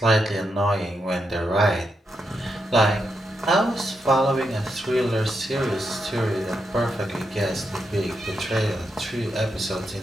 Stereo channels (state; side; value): normal; both; correlation 0.84